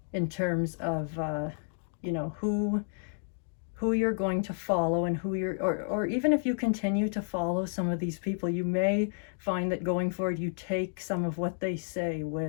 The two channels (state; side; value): silent; right; digital silence